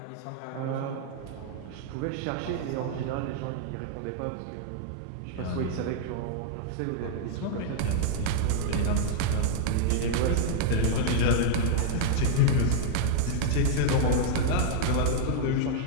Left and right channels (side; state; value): both; different; correlation -0.01